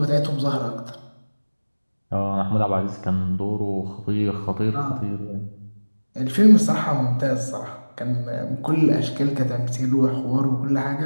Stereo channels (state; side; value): inverted; both; correlation -1.00